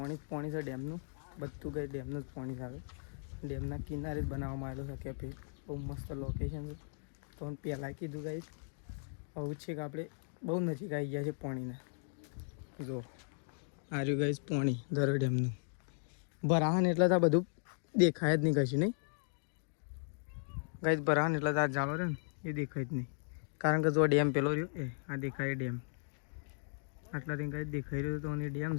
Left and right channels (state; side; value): silent; right; digital silence